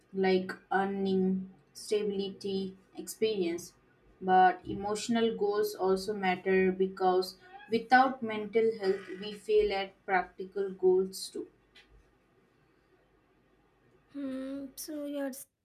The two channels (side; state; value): both; identical; correlation 1.00